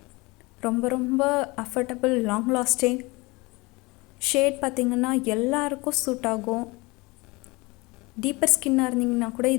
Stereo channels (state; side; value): quieter; right; 24.4 dB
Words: ரொம்ப ரொம்ப அஃபர்டபுள், லாங் லாஸ்டிங் ஷேட். பார்த்திங்கன்னா எல்லாருக்கும் சூட் ஆகும். டீப்பர் ஸ்கின்னாக இருந்தீங்கன்னா கூட